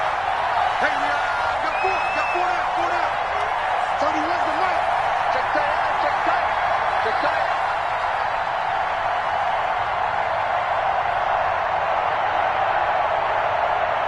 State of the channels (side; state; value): both; identical; correlation 1.00